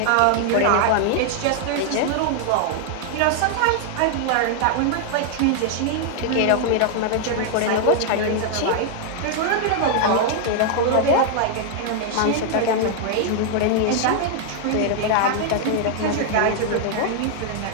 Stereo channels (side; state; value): both; different; correlation 0.00